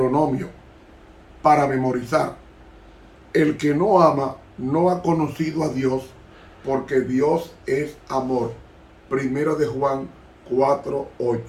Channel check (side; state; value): both; identical; correlation 1.00